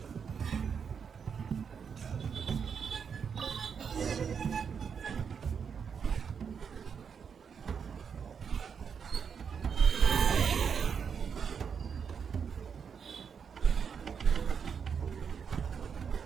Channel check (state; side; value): quieter; left; 6.7 dB